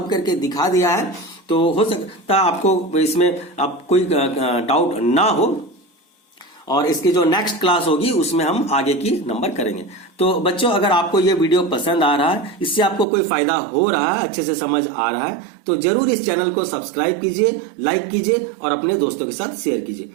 करके दिखा दिया है। तो हो सकता है आपको इसमें आप कोई डाउट ना हो, और इसकी जो नेक्स्ट क्लास होगी उसमें हम आगे की नंबर करेंगे। तो बच्चों, अगर आपको ये वीडियो पसंद आ रहा है, इससे आपको कोई फायदा हो रहा है, अच्छे से समझ आ रहा है, तो जरूर इस चैनल को सब्सक्राइब कीजिए, लाइक कीजिए और अपने दोस्तों के साथ शेयर कीजिए।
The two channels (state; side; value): drops out; left; at 13.1 s